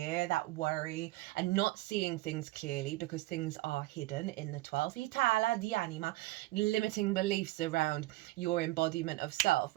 that worry, and not seeing things clearly because things are hidden in the 12th. Limiting beliefs around your embodiment of self,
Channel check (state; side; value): quieter; left; 19.1 dB